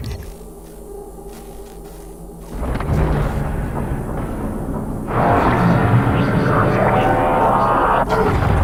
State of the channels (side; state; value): both; identical; correlation 1.00